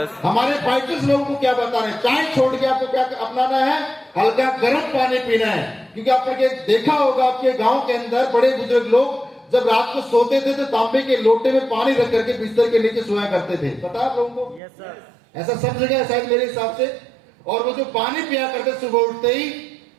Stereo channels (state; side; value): drops out; left; at 14.6 s